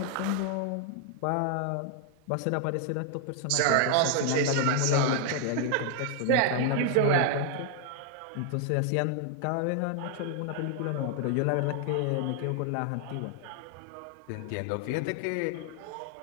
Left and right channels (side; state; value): both; different; correlation 0.00